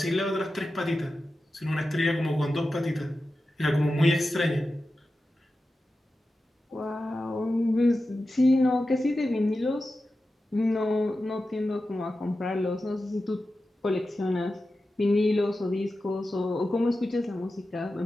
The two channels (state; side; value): normal; both; correlation 0.92